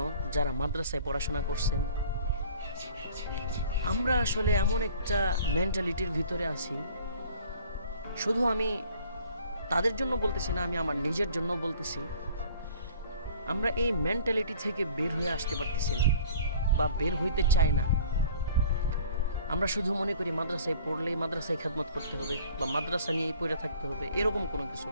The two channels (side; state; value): both; inverted; correlation -0.50